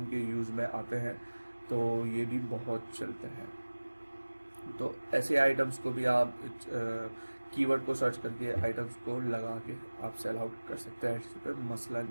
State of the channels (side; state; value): both; inverted; correlation -1.00